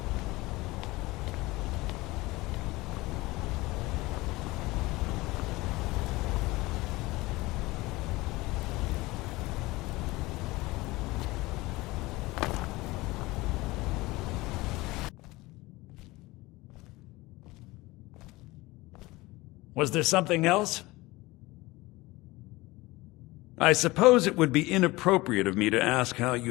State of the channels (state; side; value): quieter; right; 20.7 dB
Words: Was there something else? I suppose it would be inappropriate of me to ask how